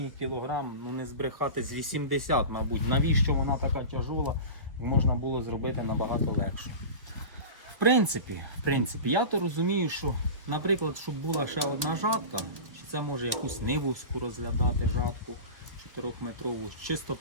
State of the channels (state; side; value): late; left; 1.5 ms